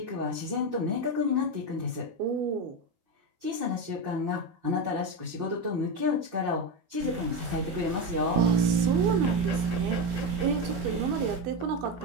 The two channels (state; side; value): late; left; 12 ms